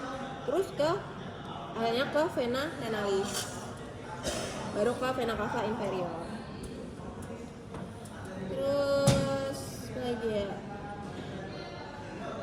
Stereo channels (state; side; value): identical; both; correlation 1.00